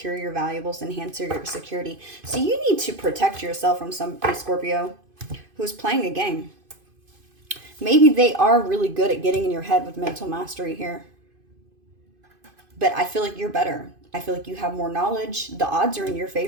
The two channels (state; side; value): late; left; 2.5 ms